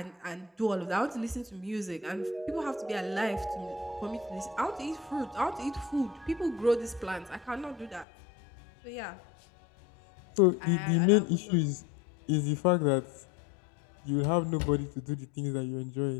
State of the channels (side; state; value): right; drops out; at 8.1 s